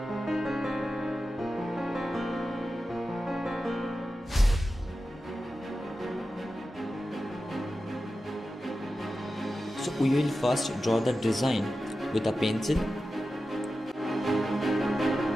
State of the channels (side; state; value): both; normal; correlation 0.93